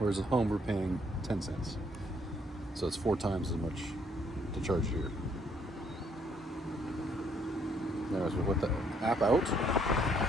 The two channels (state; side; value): normal; both; correlation 0.68